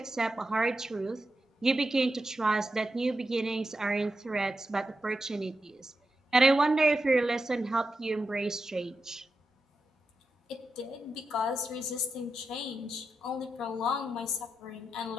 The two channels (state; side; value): normal; both; correlation 0.88